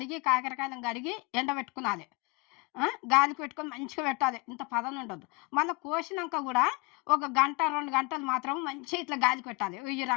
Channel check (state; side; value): quieter; right; 27.5 dB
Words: కాకరకాయలను కడిగి ఎండబెట్టుకునాలి. గాలికి పెట్టుకొని మంచిగా పెట్టాలి. ఇంత పదన ఉండదు. మళ్ళీ కోసినాక కూడా 1 గంట 2 గంటలు మాత్రం మంచిగా ఇట్లా గాలికి పెట్టాలి. ఈ